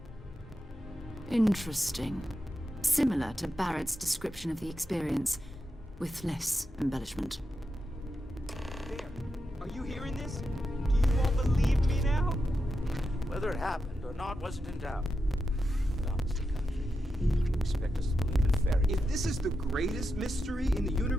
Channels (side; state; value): both; normal; correlation 0.87